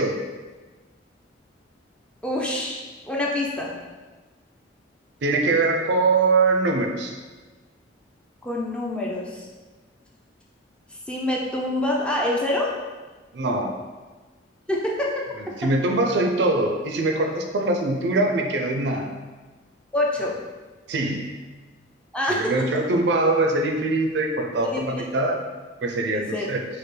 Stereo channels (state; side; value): normal; both; correlation 0.13